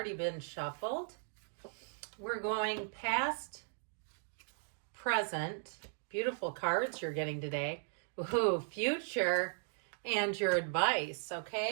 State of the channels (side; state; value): left; silent; digital silence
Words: been shuffled. We're going past, present, beautiful cards you're getting today. Ooh, future, and your advice.